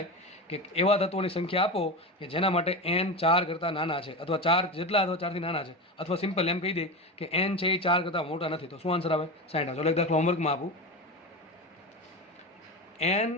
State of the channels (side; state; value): both; normal; correlation 0.22